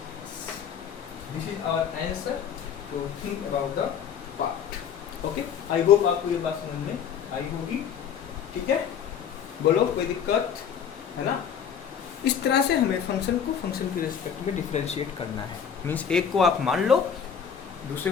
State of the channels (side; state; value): right; quieter; 7.8 dB